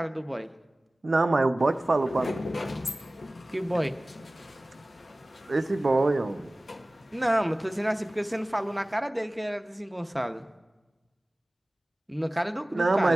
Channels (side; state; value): both; normal; correlation 0.98